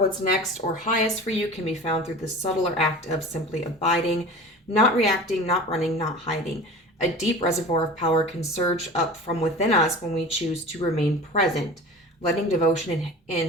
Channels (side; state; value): both; normal; correlation 0.36